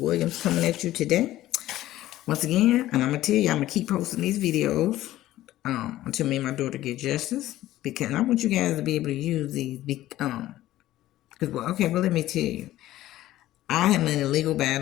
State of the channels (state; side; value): quieter; right; 14.8 dB